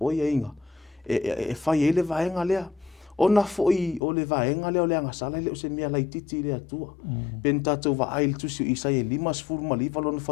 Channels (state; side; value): drops out; right; at 4.0 s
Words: ia inga e whai e le vaenga lea o na foi o le vaenga lea o le angasala le o se mea lai titi le atua pen tatou va ail tusi i sai e limas furu ma liva lona